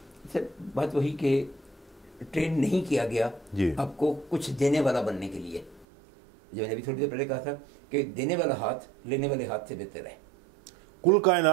सर बात वही कि ट्रेन नहीं किया गया जी, आपको कुछ देने वाला बनने के लिए। जो मैंने अभी थोड़ी देर पहले कहा था कि देने वाला हाथ लेने वाले हाथ से बेहतर है। कुल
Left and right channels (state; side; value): drops out; left; at 5.9 s